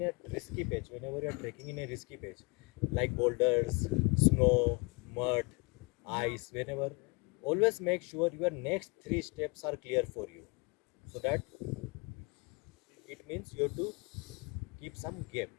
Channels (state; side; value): quieter; right; 29.2 dB